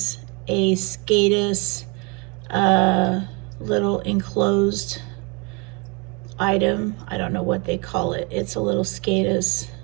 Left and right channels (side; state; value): left; quieter; 29.8 dB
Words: a Skadis little enclosed item. I don't know what they call it. It's a little Skadis